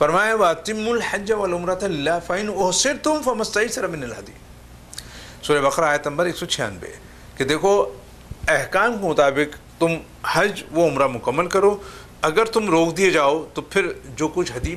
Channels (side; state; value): both; identical; correlation 1.00